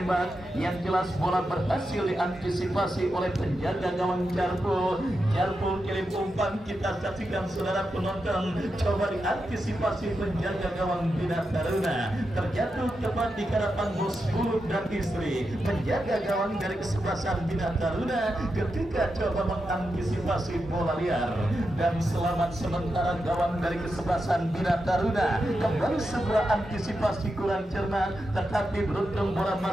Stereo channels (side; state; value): both; normal; correlation 0.88